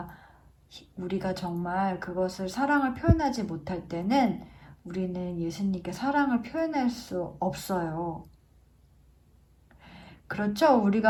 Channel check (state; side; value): identical; both; correlation 1.00